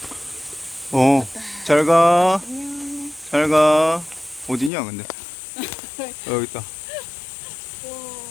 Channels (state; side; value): drops out; right; at 4.7 s